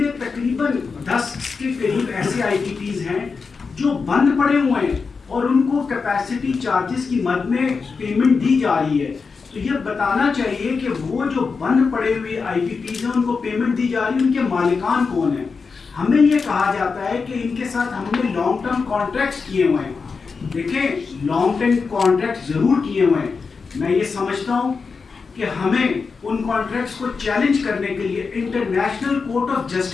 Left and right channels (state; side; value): quieter; right; 4.9 dB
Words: تقریباً 10 کے قریب ایسے IPPs ہیں جو بند پڑے ہوئے ہیں اور ان کو کیپیسٹی چارجز کی مد میں پیمنٹ دی جا رہی ہے. تو یہ بتانا چاہیے کہ وہ جو بند پڑے ہوئے IPPs ہیں ان کو پیمنٹ دی جا رہی ہے, ان کے مالکان کون ہیں. ہمیں یہ کہا جاتا ہے کہ ان کے ساتھ ہم نے لانگ ٹرم کانٹریکٹس کیے ہوئے ہیں. دیکھیں لانگ ٹرم کانٹریکٹ ضرور کیے ہوئے ہیں, میں یہ سمجھتا ہوں کہ ہمیں ان کانٹریکٹس کو چیلنج کرنے کے لیے انٹرنیشنل کورٹ آف